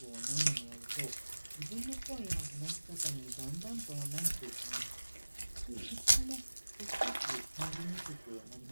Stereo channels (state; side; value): inverted; both; correlation -1.00